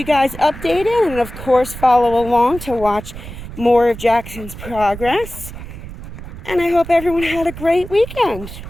guys updated, and of course follow along to watch more of Jaxon's progress. And I hope everyone had a great weekend.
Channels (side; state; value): right; noise; rumble, 12 dB below the sound